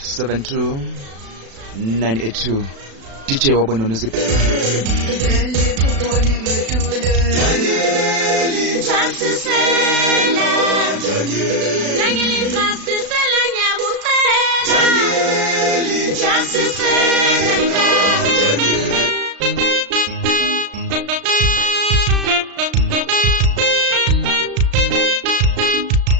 982 DJ wabononuze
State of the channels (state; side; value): late; left; 36 ms